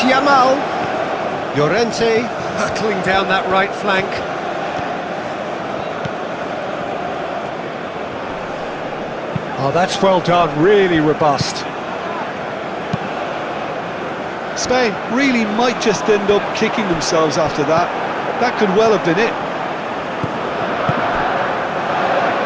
Llorente Hurtling down that right flank. Oh, that's well done, really robust. Spain really might just end up kicking themselves after that. That could well have been it.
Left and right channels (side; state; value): both; identical; correlation 1.00